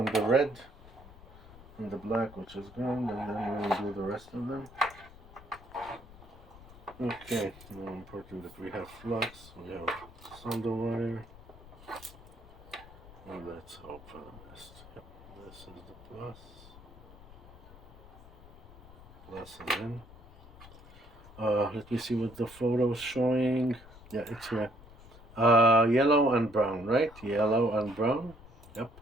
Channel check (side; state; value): left; noise; rumble, 20 dB below the sound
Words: the red and the black, which is gone, and then we'll do the rest of them. Okay, now important that we have flux, we have solder wire, and let's hope for the best. Yep, this is the plus. Plus is in. Let me see what the photo is showing. Yeah, it's here. Yellow and brown, right? Yellow and brown. Yep,